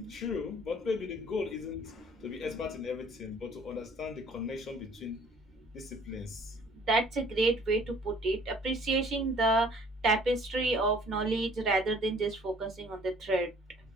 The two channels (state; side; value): normal; both; correlation 0.56